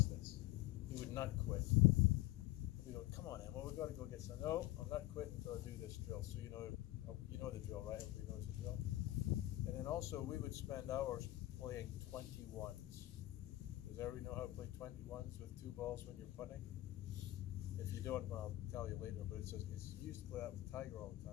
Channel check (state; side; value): quieter; right; 17.0 dB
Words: this. He would not quit. We go, come on, Emma, we've got to go get some. No, I'm not quitting until I do this drill. So you know the drill, right? Everybody knows the drill. And then also we would spend hours playing 21s. Does everybody know how to play 21s with 2 balls when you're putting? If you don't, I'll tell you later, but it's used to play that with Tiger all the